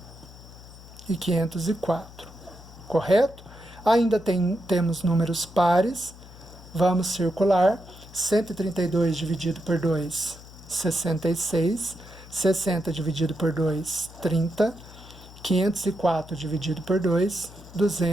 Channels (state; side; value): noise; left; hum, 19 dB below the sound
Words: e 504. Correto? Ainda temos números pares. Vamos circular. 132 dividido por 2, 66. 60 dividido por 2, 30. 504 dividido por 2,